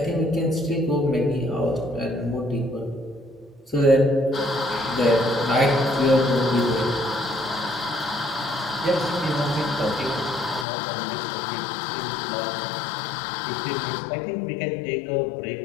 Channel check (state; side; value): drops out; right; at 10.7 s